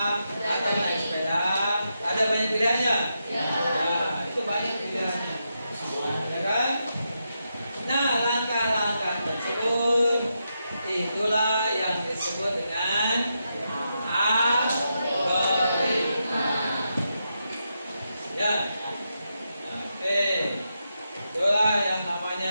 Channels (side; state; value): both; inverted; correlation -0.85